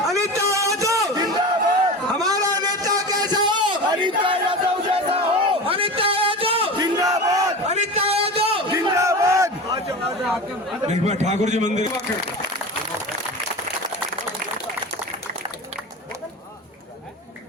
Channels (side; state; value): both; normal; correlation 0.29